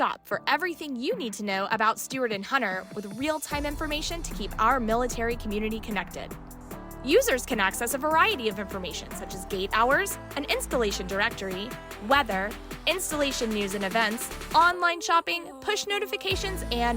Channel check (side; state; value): both; identical; correlation 1.00